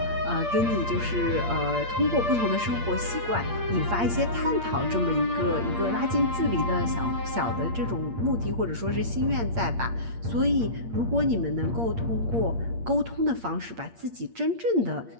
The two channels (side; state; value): left; late; 8.6 ms